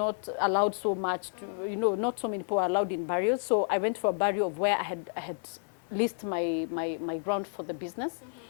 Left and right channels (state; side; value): silent; right; digital silence